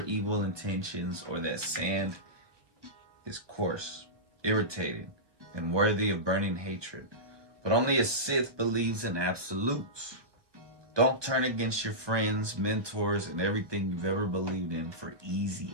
intentions, or that sand is coarse, irritating, and worthy of burning hatred. But only a Sith believes in absolutes. Don't turn against your friends, mentors, and everything you've ever believed in for easy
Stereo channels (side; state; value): left; late; 1.2 ms